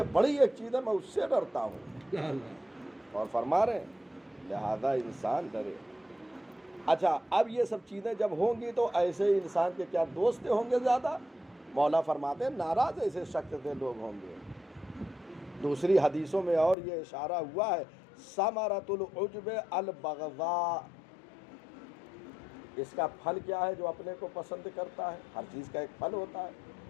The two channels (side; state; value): right; drops out; at 16.8 s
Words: بڑی ایک چیز ہے میں اس سے ڈرتا ہوں، اور فرما رہے ہیں لہذا انسان ڈرے۔ اچھا، اب یہ سب چیزیں جب ہوں گی تو ایسے انسان کے کیا دوست ہوں گے زیادہ؟ مولا فرماتے ہیں ناراض ایسے شخص سے لوگ ہوں گے۔ دوسری حدیثوں میں اور یہ اشارہ ہوا ہے ثمرۃ العجب البغضاء، اس کا پھل کیا ہے؟ جو اپنے کو پسند کرتا ہے، ہر چیز کا ایک پھل ہوتا ہے،